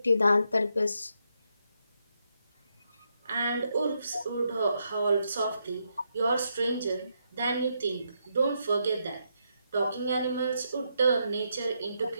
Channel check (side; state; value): both; inverted; correlation -0.80